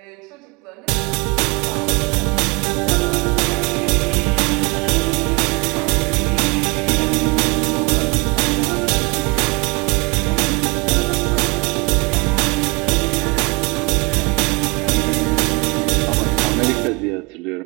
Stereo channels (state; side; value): quieter; left; 26.4 dB